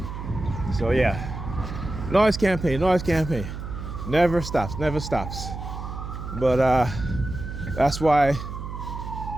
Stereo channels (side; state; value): right; noise; hum, 8 dB below the sound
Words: So yeah, noise campaign, never stops. But that's why